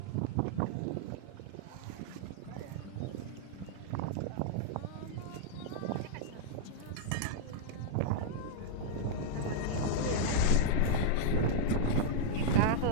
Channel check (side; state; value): both; different; correlation -0.01